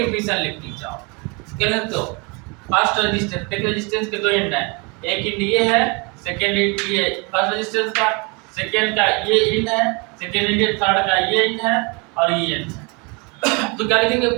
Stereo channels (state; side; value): quieter; left; 30.3 dB